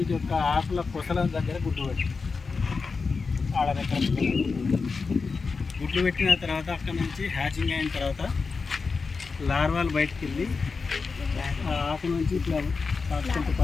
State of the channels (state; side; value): quieter; right; 4.6 dB